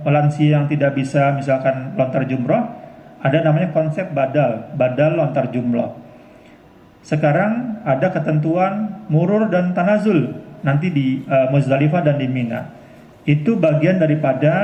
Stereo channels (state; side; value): identical; both; correlation 1.00